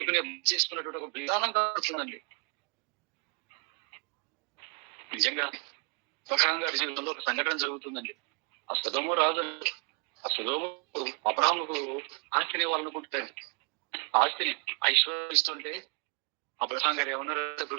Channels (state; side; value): quieter; left; 34.1 dB